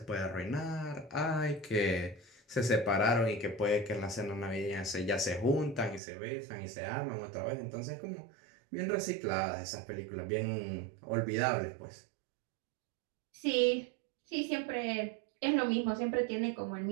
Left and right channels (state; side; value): drops out; left; at 6.0 s